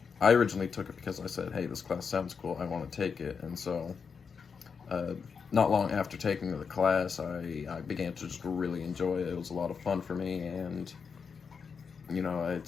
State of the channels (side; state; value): right; quieter; 5.9 dB